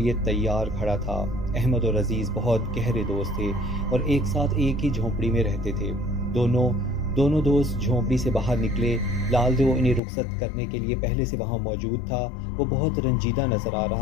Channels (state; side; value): drops out; right; at 10.0 s